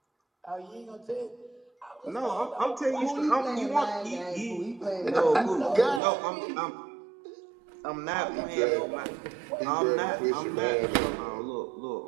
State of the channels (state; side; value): drops out; left; at 6.0 s